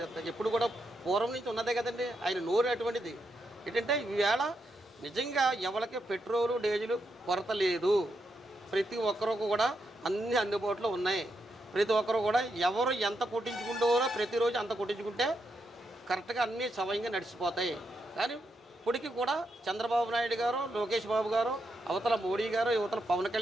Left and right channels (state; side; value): normal; both; correlation 0.82